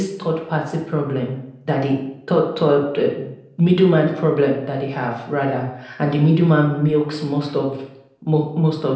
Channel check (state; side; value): identical; both; correlation 1.00